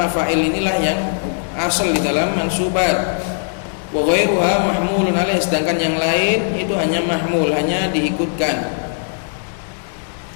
inilah yang asal di dalam mansubat. Wa ghairuha mahmulun 'alaih, sedangkan yang lain itu hanya mahmul, hanya diikutkan.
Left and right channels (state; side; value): silent; right; 58 dB below the other